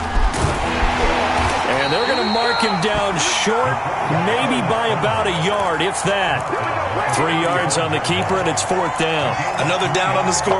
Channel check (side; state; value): both; identical; correlation 1.00